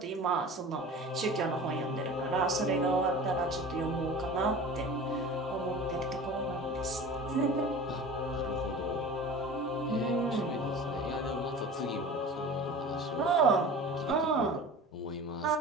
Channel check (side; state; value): both; normal; correlation 0.37